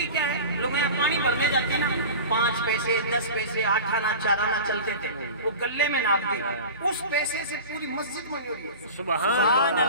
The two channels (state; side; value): inverted; both; correlation -0.34